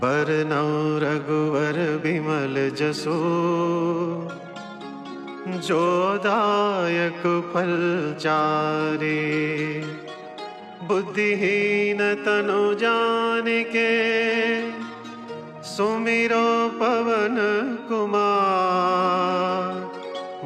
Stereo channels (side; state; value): both; identical; correlation 1.00